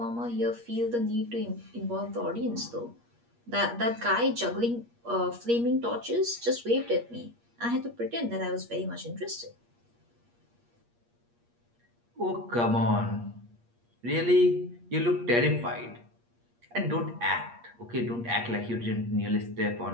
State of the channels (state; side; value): late; left; 8.5 ms